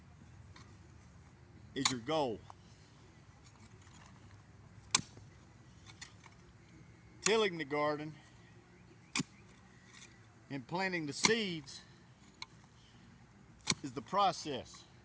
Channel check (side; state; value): both; identical; correlation 1.00